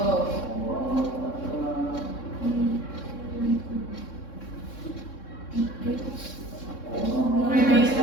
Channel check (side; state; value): right; late; 3.6 ms